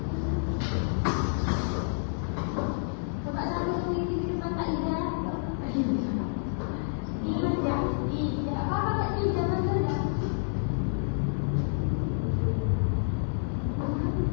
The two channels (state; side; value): silent; right; digital silence